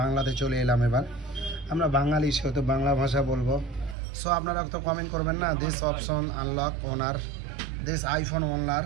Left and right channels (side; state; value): left; drops out; at 4.0 s